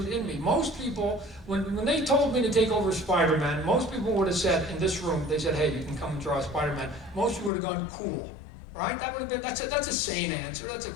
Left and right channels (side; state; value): right; drops out; at 7.5 s